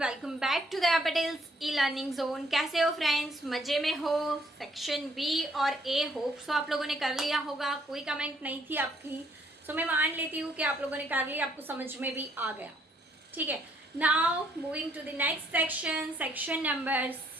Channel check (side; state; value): both; normal; correlation 0.67